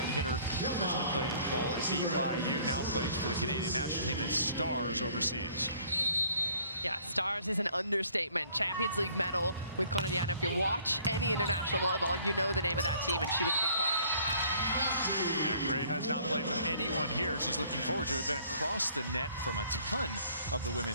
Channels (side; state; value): both; inverted; correlation -0.57